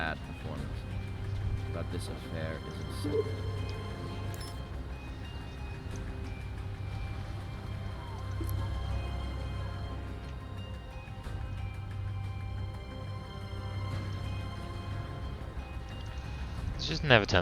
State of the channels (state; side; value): identical; both; correlation 1.00